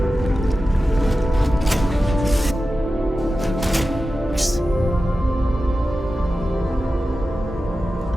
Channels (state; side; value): normal; both; correlation 0.93